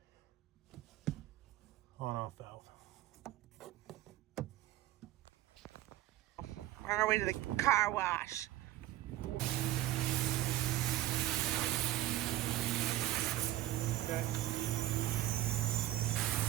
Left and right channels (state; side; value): quieter; left; 14.9 dB